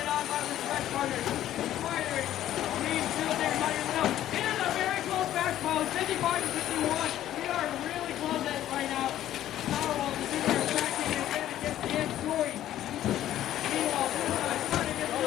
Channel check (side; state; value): right; quieter; 12.5 dB